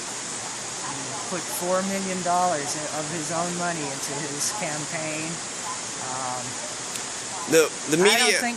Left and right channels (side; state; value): both; identical; correlation 1.00